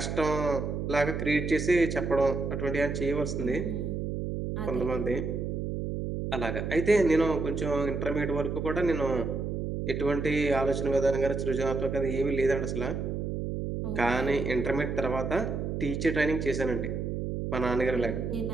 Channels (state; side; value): noise; right; hum, 3 dB below the sound